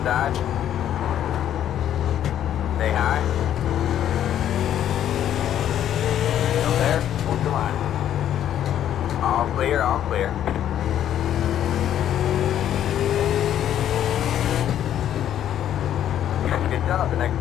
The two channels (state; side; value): quieter; right; 10.7 dB